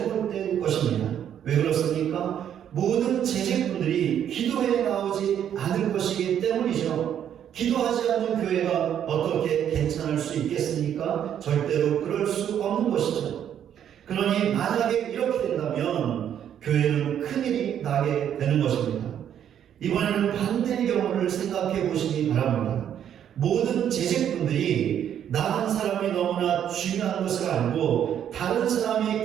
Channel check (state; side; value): quieter; left; 9.6 dB